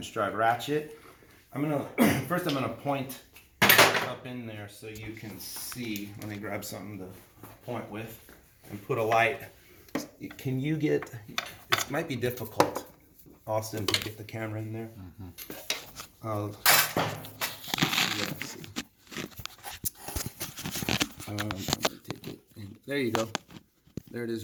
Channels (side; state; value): both; identical; correlation 1.00